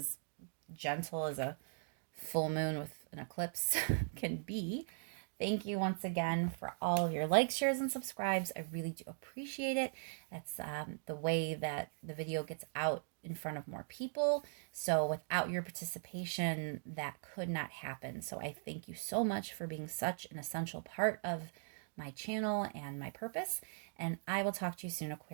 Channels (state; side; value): silent; left; digital silence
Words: gentle as a full moon with an eclipse can be. Thank you once again for all of your likes, shares, and subscribes. I really do appreciate it. That's the way that the video gets out in front of more people. So without your participation, that could not happen. So I thank you so much for being such an essential part of my channel and my purpose. And I will talk to you soon,